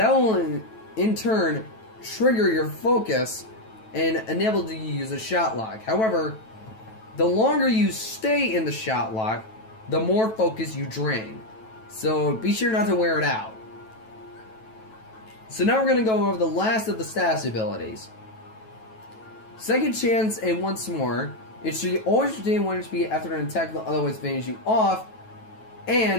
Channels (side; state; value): right; late; 9.1 ms